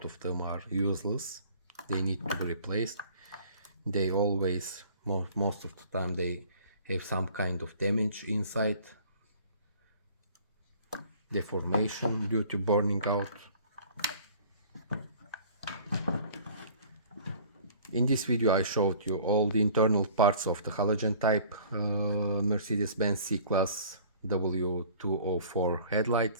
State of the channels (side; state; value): both; inverted; correlation -0.50